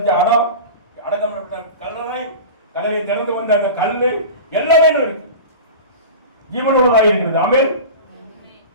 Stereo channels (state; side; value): inverted; both; correlation -0.31